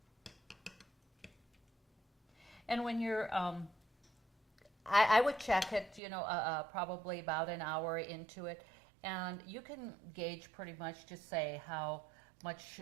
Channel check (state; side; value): drops out; left; at 6.0 s